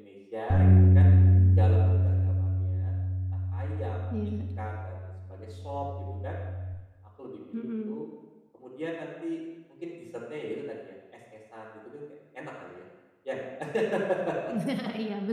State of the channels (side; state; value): both; identical; correlation 1.00